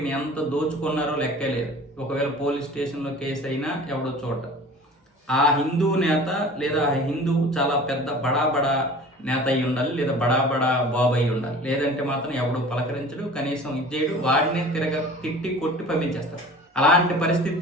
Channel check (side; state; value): both; normal; correlation 0.42